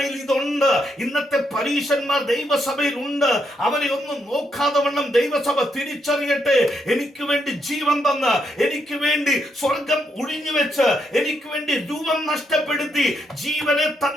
ഇതുണ്ട്. ഇന്നത്തെ പരീശന്മാർ ദൈവസഭയിൽ ഉണ്ട്. അവരെ ഒന്നും നോക്കാതെ വണ്ണം ദൈവസഭ തിരിച്ചറിയട്ടെ. എനിക്ക് വേണ്ടി ജീവൻ തന്ന്, എനിക്ക് വേണ്ടി സ്വർഗം ഒഴിഞ്ഞു വെച്ച്, എനിക്ക് വേണ്ടി രൂപം നഷ്ടപ്പെടുത്തി ജീവനെ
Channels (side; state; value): both; normal; correlation 0.78